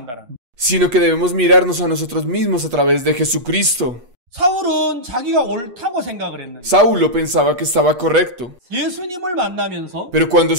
Sino que debemos mirarnos a nosotros mismos a través de Jesucristo. Saulo pensaba que estaba correcto, pero cuando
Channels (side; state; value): left; late; 8.3 ms